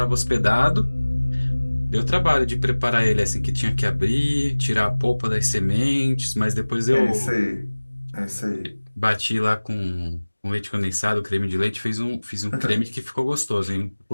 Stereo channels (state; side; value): inverted; both; correlation -1.00